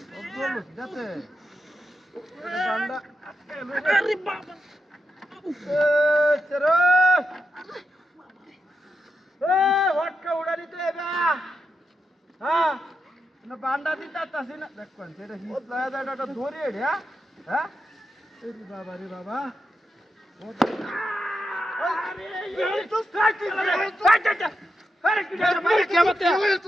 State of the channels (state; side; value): normal; both; correlation 0.86